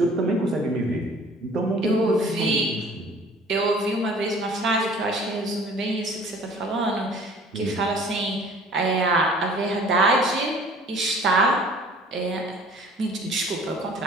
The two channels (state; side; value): normal; both; correlation 0.50